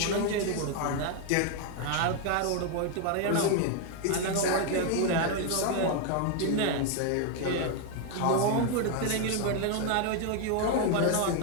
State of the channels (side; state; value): both; different; correlation 0.01